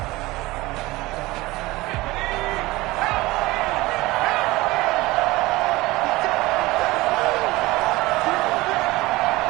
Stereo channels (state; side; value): quieter; left; 20.1 dB